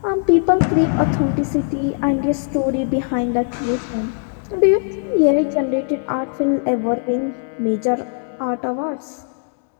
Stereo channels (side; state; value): right; silent; 64 dB below the other